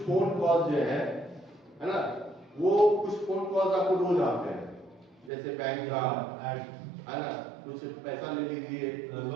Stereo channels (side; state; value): left; drops out; at 5.3 s